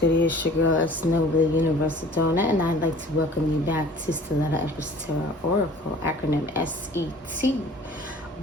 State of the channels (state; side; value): normal; both; correlation 0.48